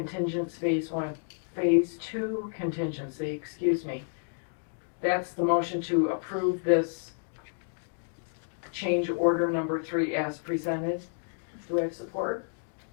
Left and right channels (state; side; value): silent; right; digital silence